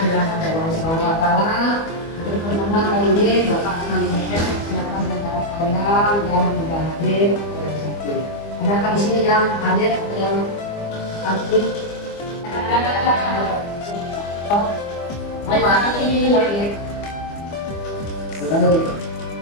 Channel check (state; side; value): late; right; 25 ms